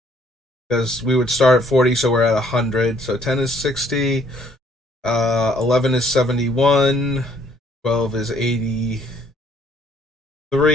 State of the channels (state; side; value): normal; both; correlation 0.64